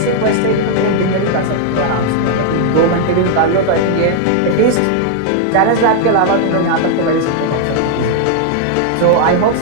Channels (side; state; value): both; different; correlation 0.00